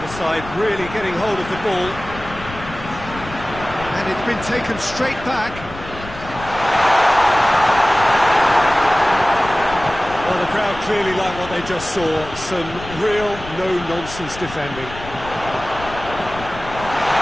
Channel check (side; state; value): left; noise; rumble, 14 dB below the sound